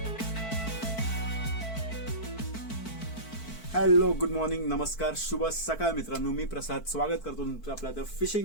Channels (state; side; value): late; right; 4.5 ms